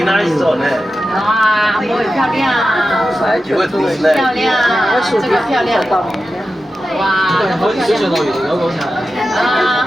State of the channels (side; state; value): both; normal; correlation 0.92